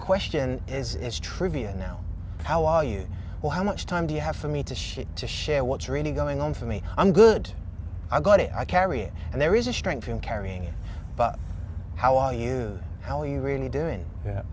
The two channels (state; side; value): identical; both; correlation 1.00